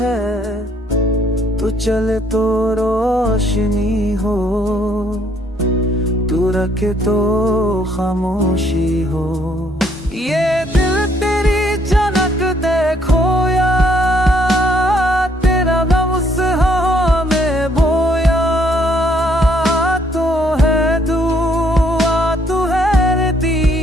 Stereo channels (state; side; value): normal; both; correlation 0.67